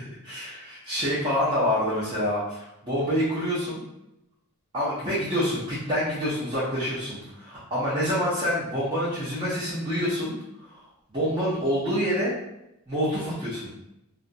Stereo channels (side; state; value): both; normal; correlation 0.23